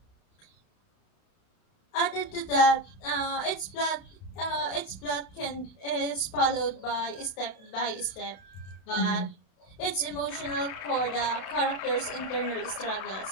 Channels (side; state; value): right; late; 31 ms